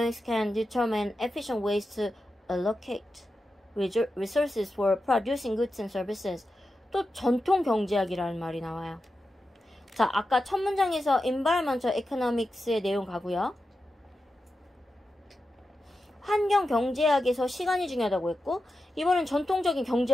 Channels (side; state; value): both; normal; correlation 0.90